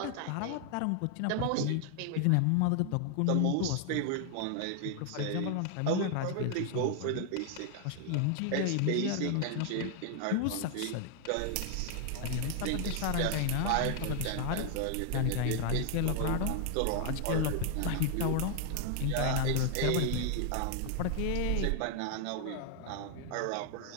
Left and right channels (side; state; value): both; different; correlation 0.00